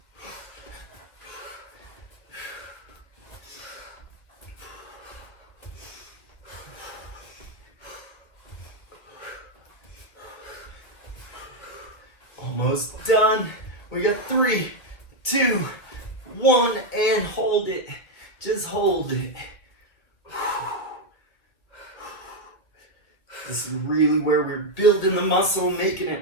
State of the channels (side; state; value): right; late; 1.8 ms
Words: Almost done. We got 3, 2, 1, and hold it. Just hold it. This is really where we're building the muscle, making